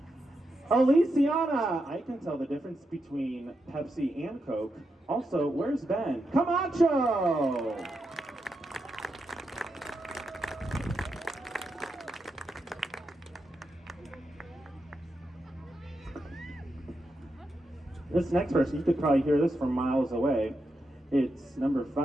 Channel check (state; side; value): normal; both; correlation 0.85